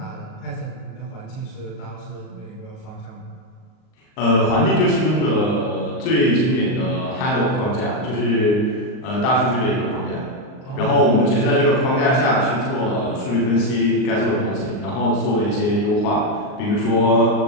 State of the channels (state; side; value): late; right; 38 ms